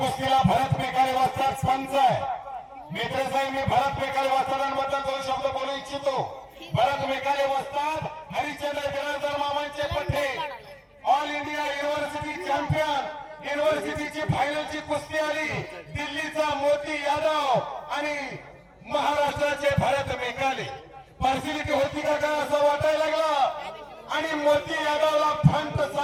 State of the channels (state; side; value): identical; both; correlation 1.00